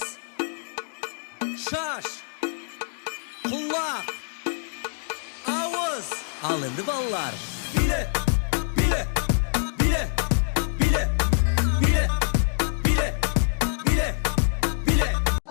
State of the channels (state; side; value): silent; right; digital silence